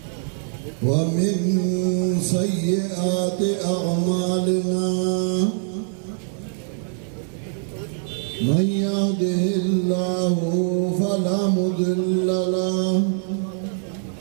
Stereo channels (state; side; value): silent; left; digital silence